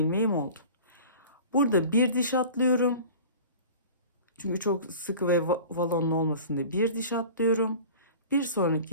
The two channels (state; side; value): inverted; both; correlation -0.40